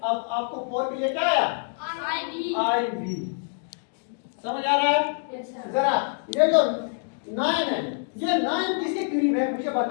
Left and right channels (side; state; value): right; silent; 60 dB below the other